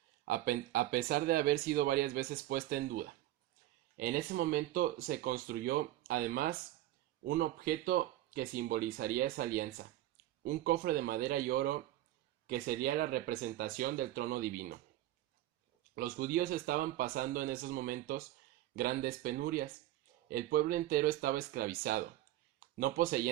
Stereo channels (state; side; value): quieter; left; 14.7 dB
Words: a pesar de haber sido varias veces puesta en duda. En ese momento se construyó, además, un objeto que simbolizaría esa alianza, un cofre de madera y oro que sería la representación del trono divino. Los judíos estaban pasando en esos momentos grandes penurias. El pueblo entero estaba esclavizado. No